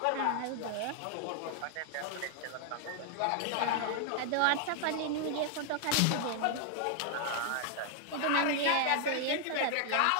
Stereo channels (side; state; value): both; different; correlation 0.00